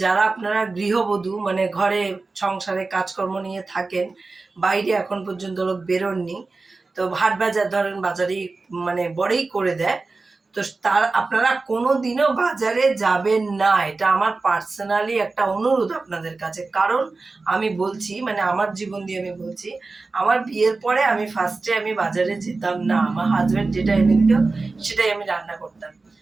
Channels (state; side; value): quieter; left; 3.7 dB